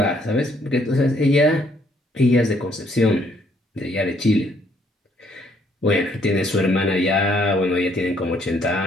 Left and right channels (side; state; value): both; normal; correlation 0.67